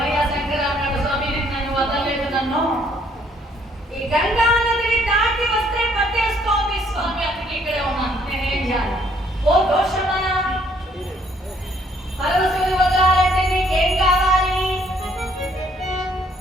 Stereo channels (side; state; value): both; normal; correlation 0.65